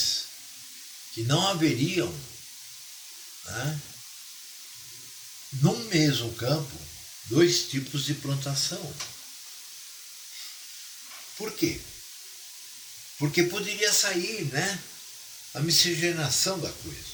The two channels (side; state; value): both; identical; correlation 1.00